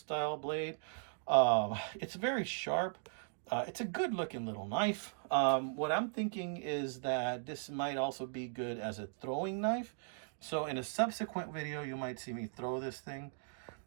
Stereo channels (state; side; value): silent; left; digital silence